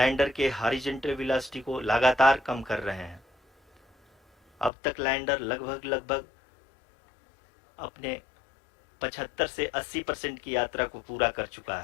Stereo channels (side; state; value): right; drops out; at 4.7 s